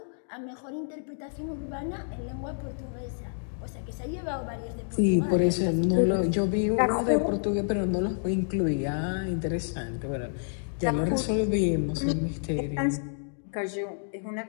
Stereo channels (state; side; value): silent; right; digital silence